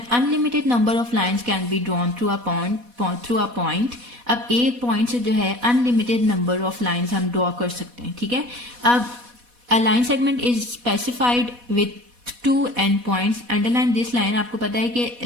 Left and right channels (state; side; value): late; left; 4.1 ms